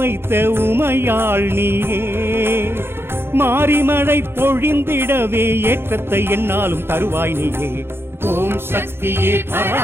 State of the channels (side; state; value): left; late; 0.11 ms